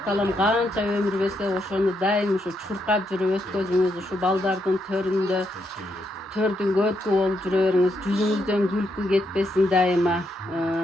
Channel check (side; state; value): both; normal; correlation 0.79